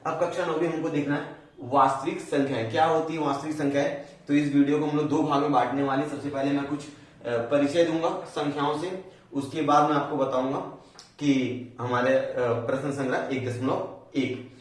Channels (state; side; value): identical; both; correlation 1.00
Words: अब कक्षा 9वीं हमको देखना है वास्तविक संख्याएं क्या होती है। वास्तविक संख्याएं, तो इस वीडियो को हम लोग 2 भाग में बांटने वाले। सबसे पहले मैं कुछ परिचय दूंगा संख्याओं से, उसके बाद मैं आपको बताऊंगा कि हमारे प्रश्न संग्रह 1.1,